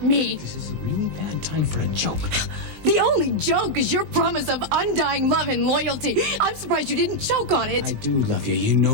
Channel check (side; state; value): left; late; 19 ms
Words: me. This is a really bad time for a joke. The only joke is your promise of undying love and loyalty. I'm surprised you didn't choke on it. I do love you. You